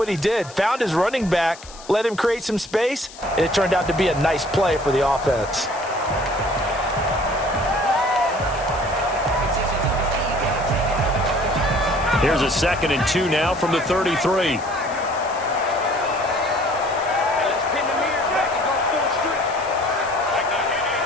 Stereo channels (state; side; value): noise; left; hiss, 18 dB below the sound